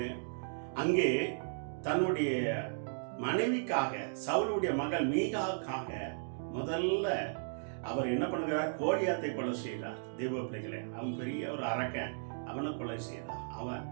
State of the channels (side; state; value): left; silent; digital silence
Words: அங்கே தன்னுடைய மனைவிக்காக, சவுலுடைய மகள் மீகாவுக்காக முதல்ல அவர் என்ன பண்ணுகிறார்? கோலியாத்தை கொலை செய்தார். தெய்வ பிள்ளைகளே, அவன் பெரிய ஒரு அரக்கன், அவனை கொலை செய்தார். அவன்